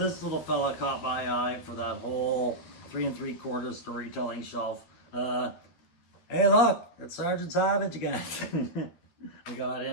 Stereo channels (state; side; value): late; right; 12 ms